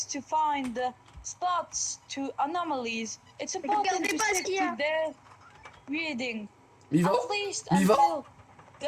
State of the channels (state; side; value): identical; both; correlation 1.00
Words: to find the spots to anomalies. It's important regardez to pas ce stick qu'il y a. to their reading. Mais il va... At least Mais il va- until